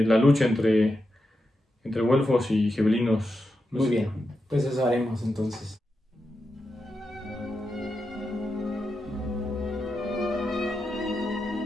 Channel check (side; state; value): both; normal; correlation 0.88